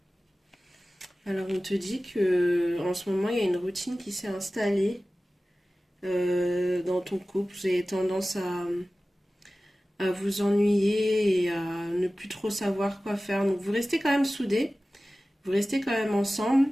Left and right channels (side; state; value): both; normal; correlation 0.96